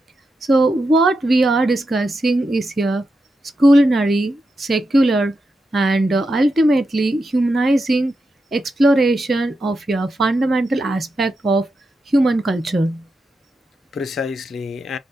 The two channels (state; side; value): normal; both; correlation 0.87